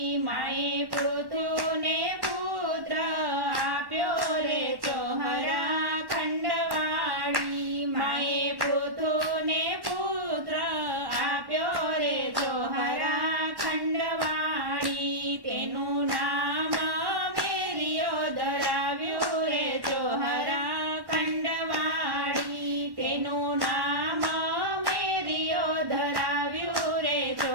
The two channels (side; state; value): left; late; 1.1 ms